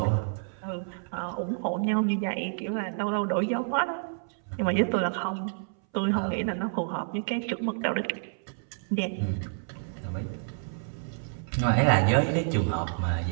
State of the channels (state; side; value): silent; left; 59 dB below the other